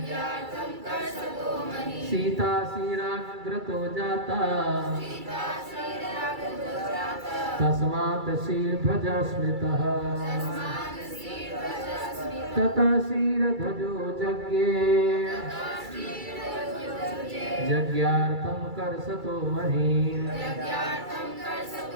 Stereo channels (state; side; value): late; left; 2.3 ms